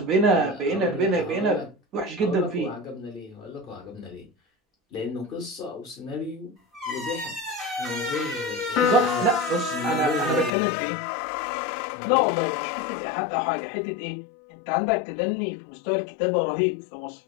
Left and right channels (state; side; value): drops out; right; at 10.5 s